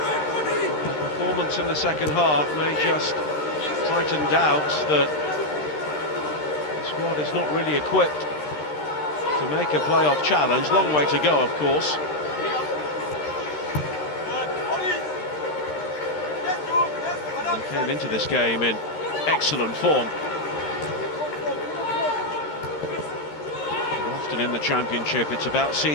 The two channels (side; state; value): right; late; 13 ms